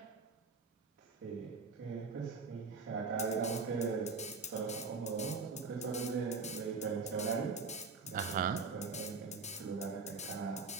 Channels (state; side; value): quieter; left; 4.5 dB